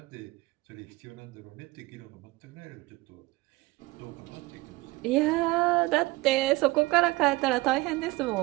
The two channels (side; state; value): left; quieter; 21.1 dB